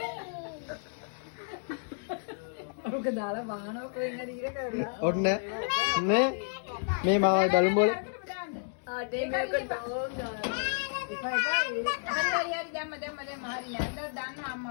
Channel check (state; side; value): silent; right; digital silence